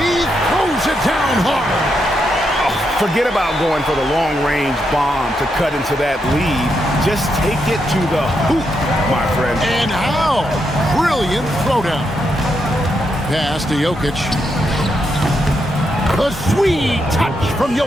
throws it down hard. Forget about going for the long-range bomb to cut into that lead. Just take it to the hoop, my friend. And how? Brilliant throwdown. Pass to Jokic. A sweet touch from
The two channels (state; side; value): normal; both; correlation 0.81